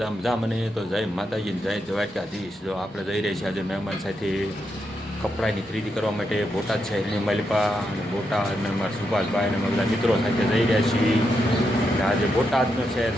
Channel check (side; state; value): both; normal; correlation 0.83